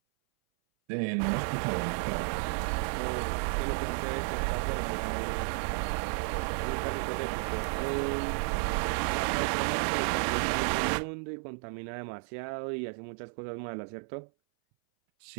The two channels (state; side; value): silent; left; 56 dB below the other